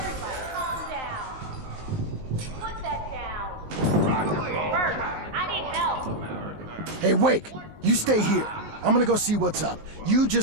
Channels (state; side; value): late; left; 19 ms